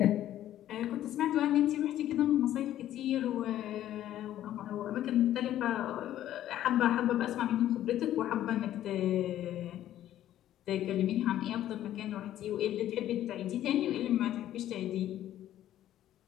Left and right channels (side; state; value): right; quieter; 12.4 dB